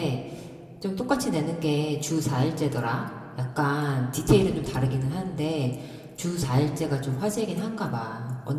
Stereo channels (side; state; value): both; identical; correlation 1.00